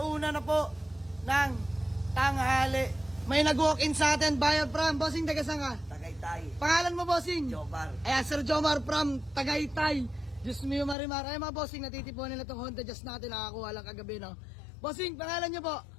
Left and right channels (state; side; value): drops out; right; at 11.0 s